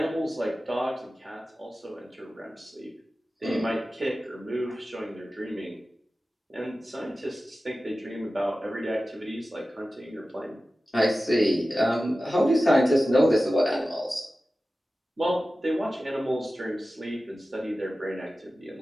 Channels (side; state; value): both; normal; correlation 0.95